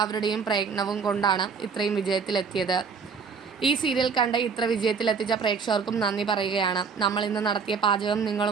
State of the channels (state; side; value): quieter; left; 5.7 dB